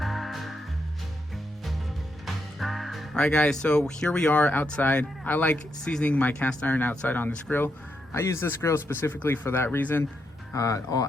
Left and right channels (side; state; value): both; normal; correlation 0.81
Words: Alright guys, so here we are outside. I like seasoning my cast iron outside on this grill. I use this grill specifically for that reason.